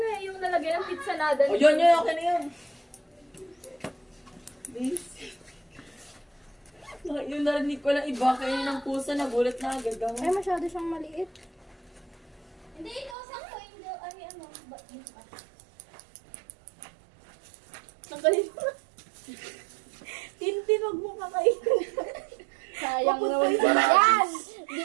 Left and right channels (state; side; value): drops out; left; at 13.2 s